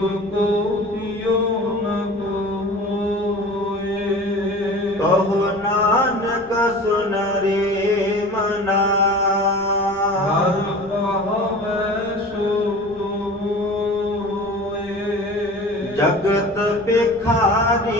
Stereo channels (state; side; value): noise; left; rumble, 24 dB below the sound